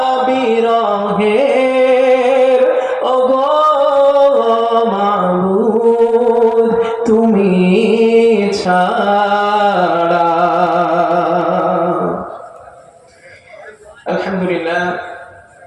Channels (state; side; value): identical; both; correlation 1.00